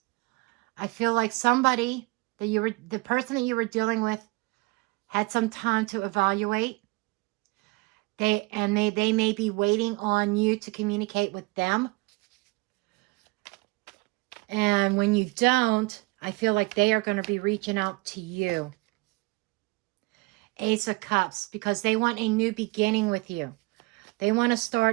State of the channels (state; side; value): quieter; left; 25.1 dB